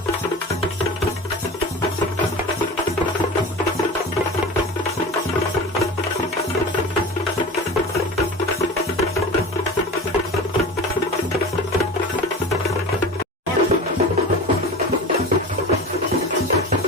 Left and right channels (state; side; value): normal; both; correlation 0.33